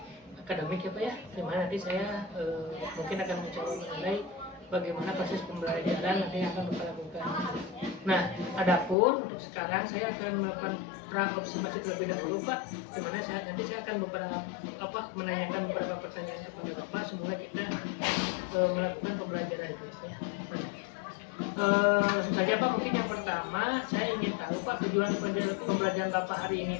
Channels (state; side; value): drops out; right; at 9.0 s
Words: akademik ya Pak ya, dimana nanti saya mungkin akan mencoba menilai bagaimana proses pembelajaran nanti yang akan Bapak lakukan. Nah, adapun untuk sekarang saya akan melakukan pra-observasi terlebih dahulu Pak, dimana nanti saya akan menanyakan beberapa pertanyaan kepada Bapak semula kita melakukan pembelajaran itu ya. Langsung saja Pak, mungkin yang pertama saya ingin tahu Pak, tujuan pembelajaran Bapak hari ini